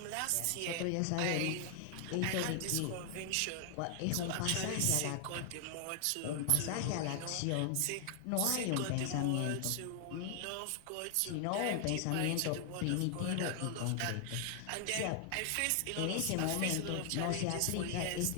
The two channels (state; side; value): different; both; correlation 0.00